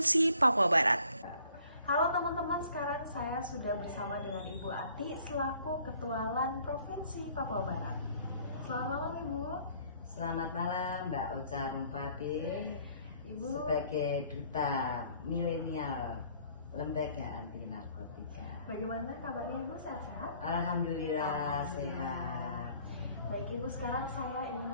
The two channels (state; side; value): inverted; both; correlation -0.59